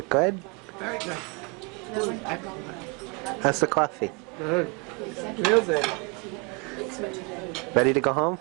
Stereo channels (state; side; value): quieter; left; 32.0 dB